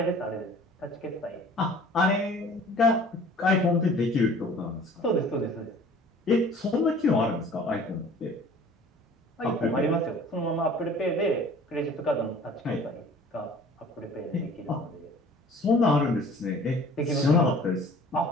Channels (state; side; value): normal; both; correlation 0.49